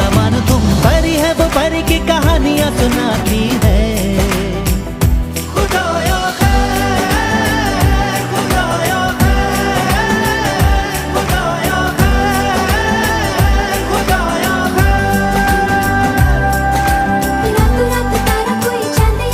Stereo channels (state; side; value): identical; both; correlation 1.00